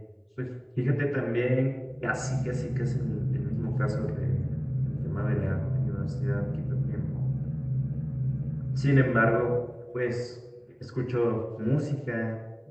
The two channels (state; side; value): identical; both; correlation 1.00